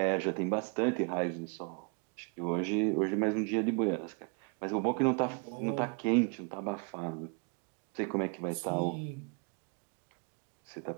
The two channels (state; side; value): quieter; left; 36.9 dB